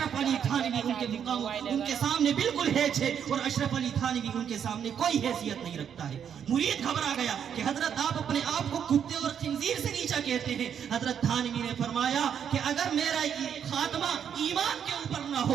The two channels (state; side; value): quieter; left; 8.3 dB